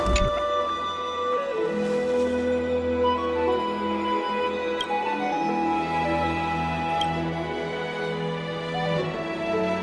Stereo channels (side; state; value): both; identical; correlation 1.00